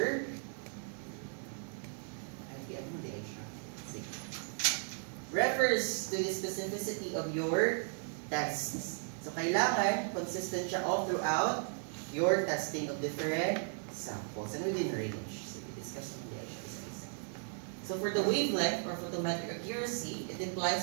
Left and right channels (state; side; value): silent; left; 54 dB below the other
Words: refers to the specificity of your tests. So, kailangan consistent siya all throughout your testing of different samples and within range. So, we discuss on the exercise. So, for the wavelength or photometric accuracy, it